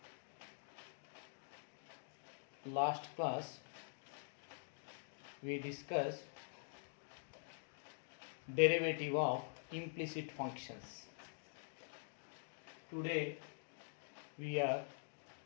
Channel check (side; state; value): right; silent; digital silence